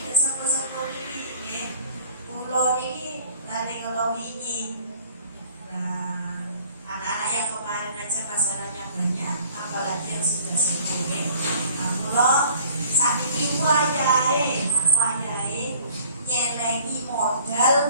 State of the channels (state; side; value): inverted; both; correlation -0.53